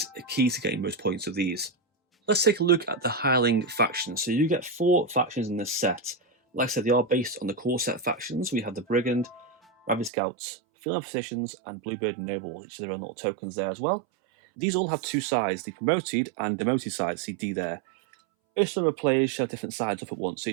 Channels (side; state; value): left; drops out; at 10.1 s